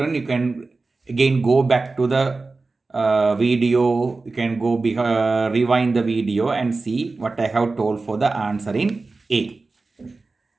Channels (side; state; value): left; quieter; 3.7 dB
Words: you can again go back to the video. You can go rewind the video and see what I have told for the answer in A.